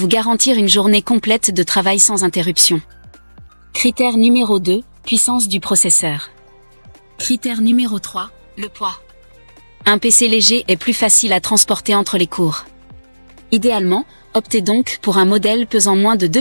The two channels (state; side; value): inverted; both; correlation -1.00